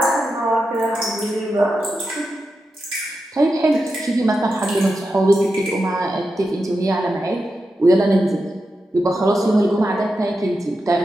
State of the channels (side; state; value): both; normal; correlation 0.89